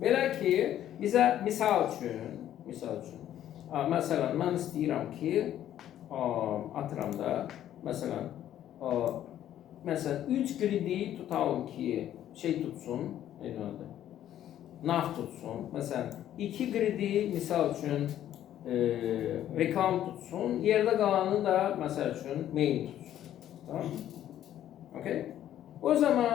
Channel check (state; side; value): quieter; right; 11.6 dB